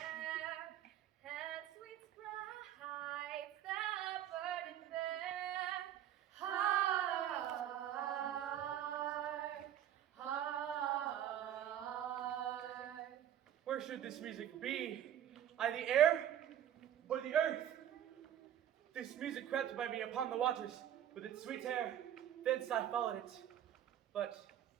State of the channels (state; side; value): quieter; left; 10.7 dB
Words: and sweet sprites that burden there. Heart, heart. Where should this music be? I the air or the earth? This music crept by me upon the waters with its sweet air. Thence I followed it, but